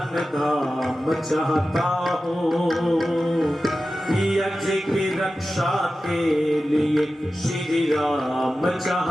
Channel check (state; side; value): normal; both; correlation 0.94